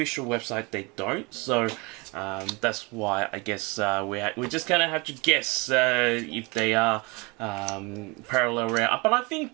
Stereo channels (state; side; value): quieter; left; 27.1 dB